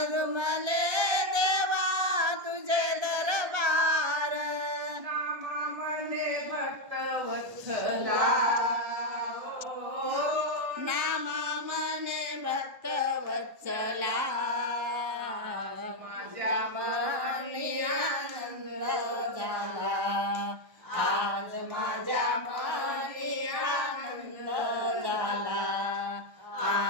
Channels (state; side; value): late; left; 1.3 ms